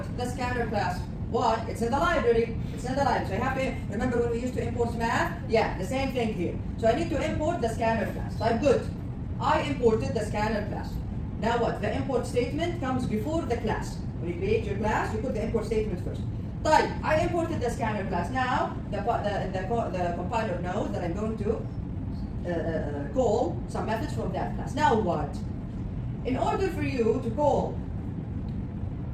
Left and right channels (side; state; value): both; identical; correlation 1.00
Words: the scanner class. Why? It's in the library. So I have to, remember when we used to import math? Yeah, the same thing here. So I need to import the scanner class. Type good. I imported the scanner class. Now what? The import statement comes before the class. When you create your class, you put the import statement first. Type. I imported the scanner class. Now the compiler knows that I'm going to call some methods from that class. Now what? In order for you to call,